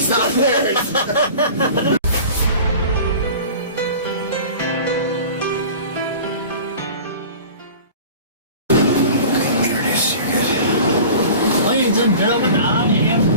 not theirs. Ladies and gentlemen, I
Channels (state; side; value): inverted; both; correlation -0.40